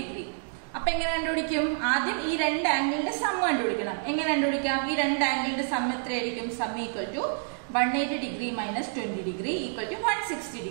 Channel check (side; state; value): left; silent; digital silence